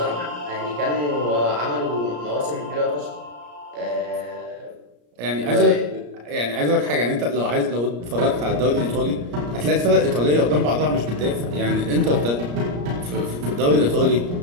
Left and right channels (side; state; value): left; late; 34 ms